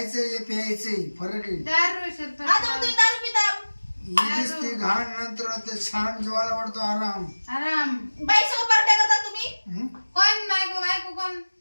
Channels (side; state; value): both; inverted; correlation -1.00